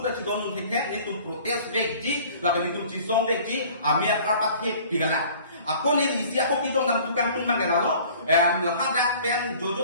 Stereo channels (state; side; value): inverted; both; correlation -0.49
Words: ci don ni ke ni tuhan protes veji la ni tuhan ci song veji amia karpat he pidala aku ni isi aku kidong nam tukang tumbang gelalo hadak pen